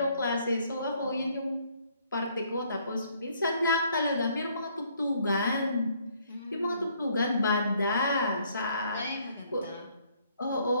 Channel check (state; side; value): inverted; both; correlation -0.65